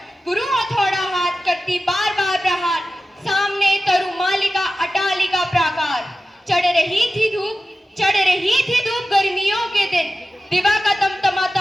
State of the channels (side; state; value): both; normal; correlation 0.94